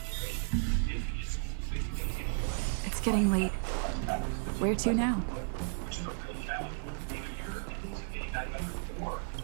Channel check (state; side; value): silent; left; digital silence